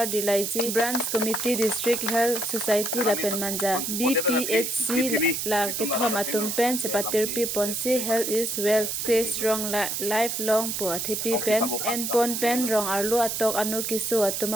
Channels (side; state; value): right; noise; hiss, 2 dB below the sound